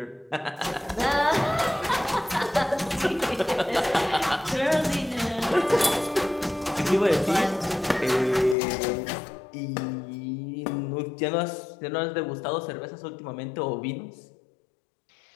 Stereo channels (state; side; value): drops out; right; at 8.6 s